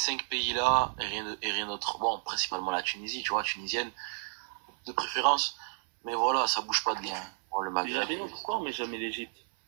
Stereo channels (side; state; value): left; silent; 57 dB below the other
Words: pays-là et rien d'autre. Bon, principalement la Tunisie, tu vois, tunisienne de préférence. Mais voilà, ça bouge pas de bien. Bon, le Maghreb. Pourquoi on met jamais l'Égypte?